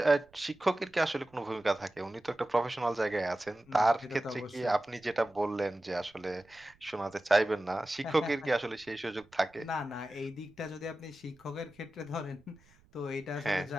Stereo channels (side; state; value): right; noise; rumble, 30 dB below the sound